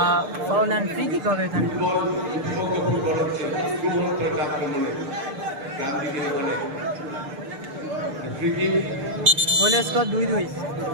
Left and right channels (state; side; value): late; left; 6.7 ms